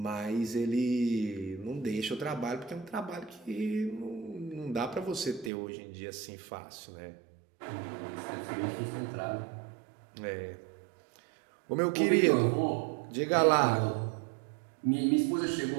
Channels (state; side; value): drops out; left; at 5.5 s